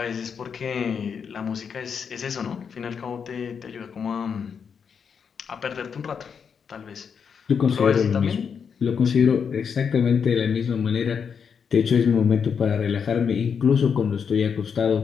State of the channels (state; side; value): quieter; right; 6.7 dB